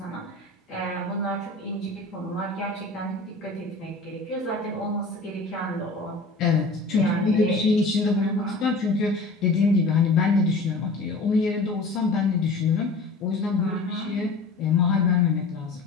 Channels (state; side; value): quieter; right; 3.3 dB